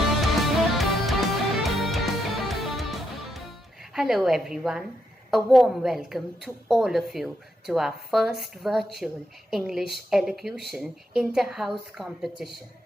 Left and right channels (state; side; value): normal; both; correlation 0.81